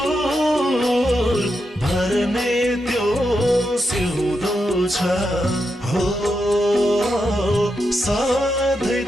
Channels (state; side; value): normal; both; correlation 0.85